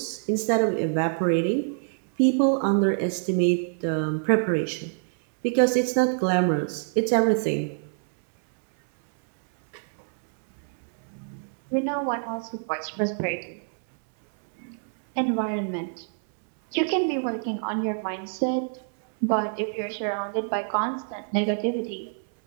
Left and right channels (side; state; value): left; silent; 61 dB below the other